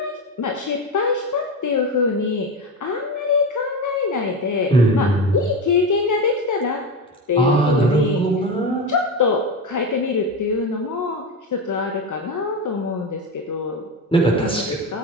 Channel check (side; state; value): both; normal; correlation 0.19